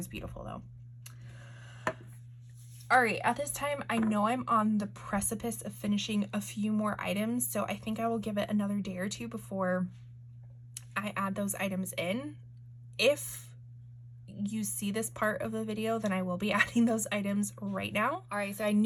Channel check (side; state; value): both; identical; correlation 1.00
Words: beautiful though. All right, at this time, I know I'm on the precipice of finishing a few more items, so I think I will give it another day or two before I add those items in. If you see this part of the video, then I will be adding those items right now. All right, so I